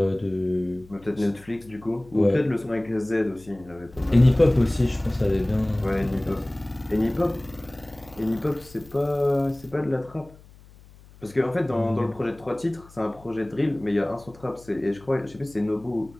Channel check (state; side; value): noise; left; hum, 23 dB below the sound